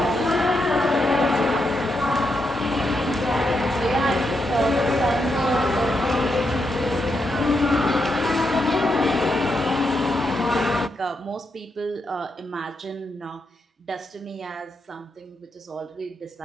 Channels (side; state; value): both; normal; correlation 0.82